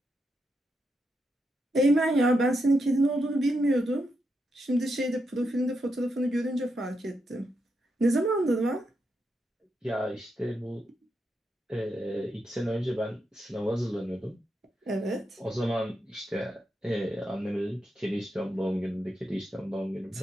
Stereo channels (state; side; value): normal; both; correlation 0.83